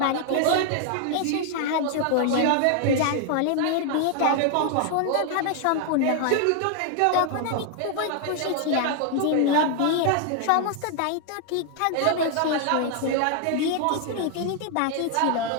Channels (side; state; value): both; different; correlation 0.00